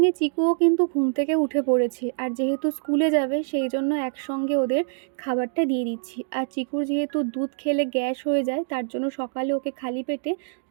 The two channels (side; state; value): left; silent; digital silence